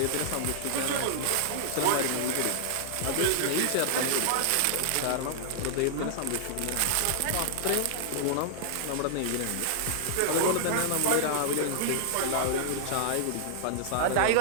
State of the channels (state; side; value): different; both; correlation -0.01